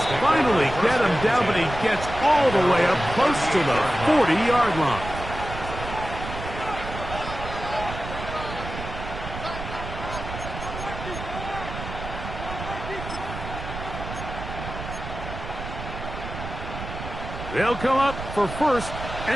finally get him down, but he gets all the way up close to the 40-yard line. They'll come up for first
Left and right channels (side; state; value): right; noise; rumble, 8 dB below the sound